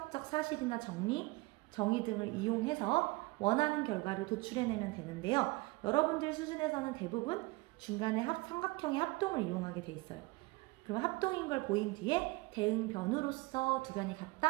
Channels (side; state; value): left; quieter; 23.8 dB